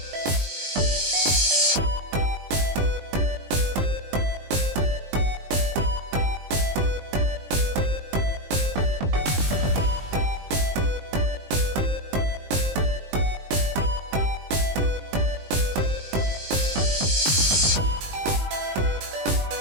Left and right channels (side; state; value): left; late; 21 ms